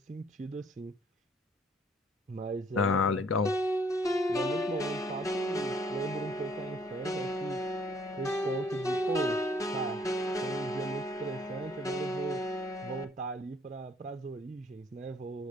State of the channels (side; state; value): both; normal; correlation 0.62